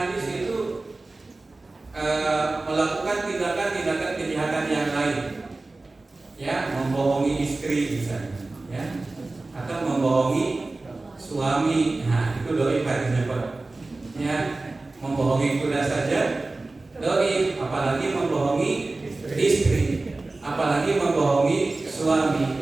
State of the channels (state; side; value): quieter; left; 3.2 dB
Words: itu melakukan tindakan-tindakan kejahatan yang lain? Ya, membohongi istri misalnya, ya, atau membohongi suami. Nah, itu doi hadisnya Pak. Ya, membohongi kuda saja doi, apalagi membohongi istri, apalagi membohongi suami,